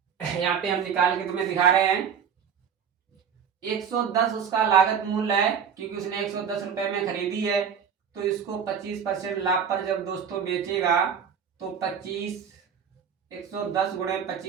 यहाँ पे हम निकाल के तुम्हें दिखा रहे हैं। 110 उसका लागत मूल्य है क्योंकि उसने 110 रुपए में खरीदी है। तो इसको 25% लाभ पर जब दोस्तों बेचेगा तो 25, 110 गुणे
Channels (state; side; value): quieter; left; 7.3 dB